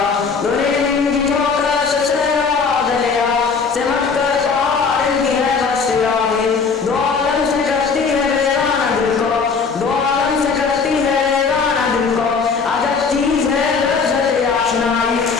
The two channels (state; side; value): quieter; right; 5.2 dB